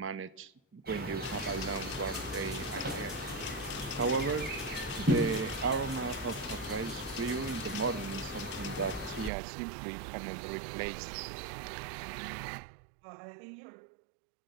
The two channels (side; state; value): left; drops out; at 9.3 s